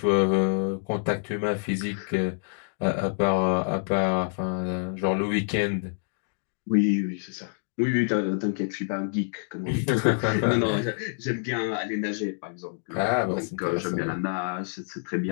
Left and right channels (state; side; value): silent; right; digital silence